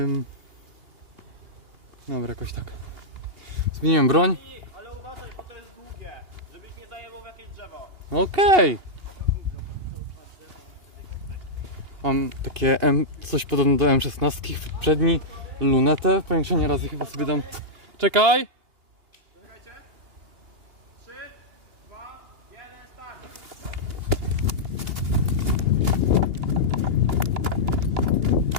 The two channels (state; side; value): late; left; 2.8 ms